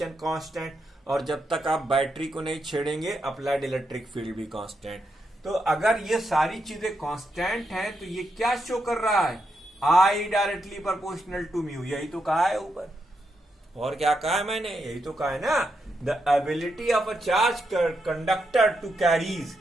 constant, और जब तक आप बैटरी को नहीं छेड़ेंगे अप्लाइड इलेक्ट्रिक फील्ड भी कांस्टेंट। तो अगर ये सारी चीजें कांस्टेंट हैं तो ये क्या शो कर रहा है? I directly proportional to mu. यही तो कहा है ऊपर, और क्या कहा है मैंने? यही तो कहा है ना, the ability of a charge conductor to carries,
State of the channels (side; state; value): both; normal; correlation 0.83